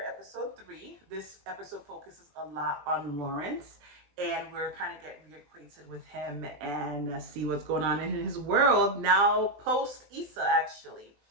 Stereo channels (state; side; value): late; left; 20 ms